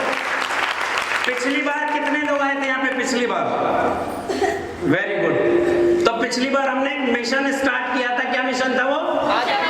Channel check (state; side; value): identical; both; correlation 1.00